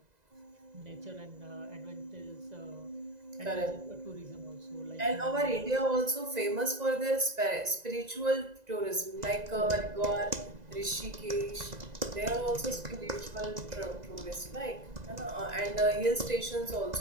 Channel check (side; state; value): left; late; 2.0 ms